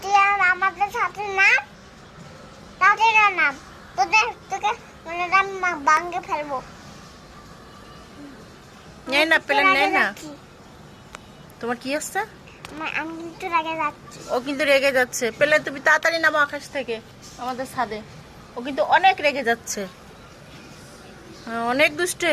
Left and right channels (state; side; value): identical; both; correlation 1.00